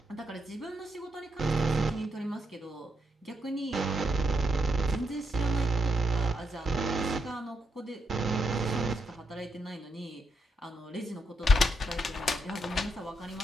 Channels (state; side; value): normal; both; correlation 0.81